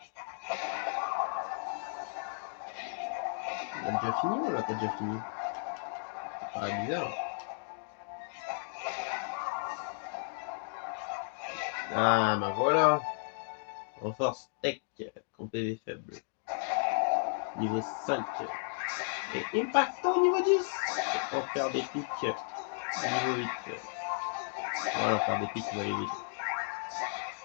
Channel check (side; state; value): right; silent; digital silence